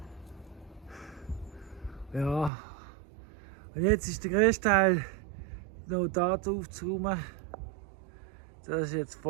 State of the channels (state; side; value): drops out; left; at 2.5 s